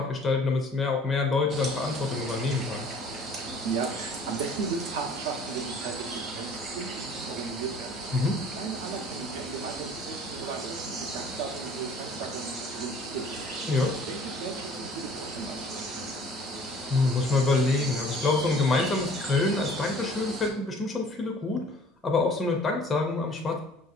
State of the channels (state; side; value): normal; both; correlation 0.51